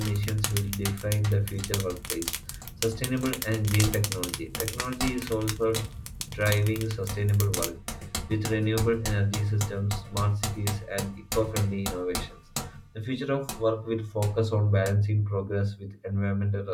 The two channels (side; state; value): both; identical; correlation 1.00